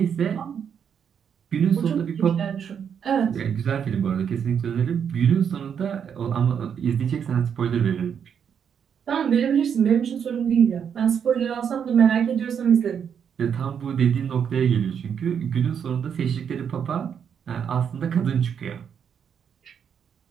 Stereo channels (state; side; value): quieter; left; 7.7 dB